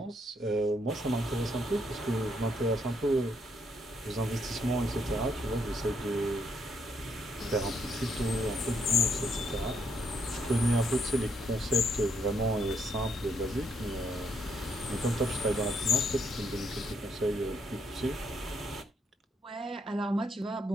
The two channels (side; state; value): both; normal; correlation 0.74